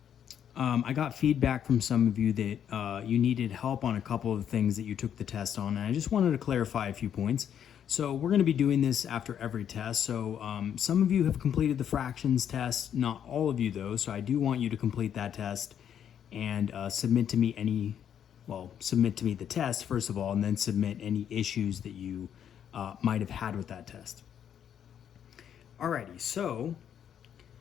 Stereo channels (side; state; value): right; quieter; 9.1 dB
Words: I got feedback from some of you that you needed help on a couple of things that you took the test on, and I just wanted to clarify a few points. So we're going to be doing this after every test. So some of you have completed the fractions test, not all of you though, so I do want you to complete that test and submit to me the test first of all, and then submit any issues that you might have had with that test. Alrighty, so